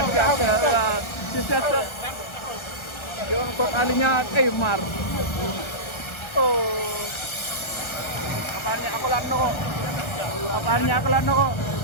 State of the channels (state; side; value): late; right; 1.3 ms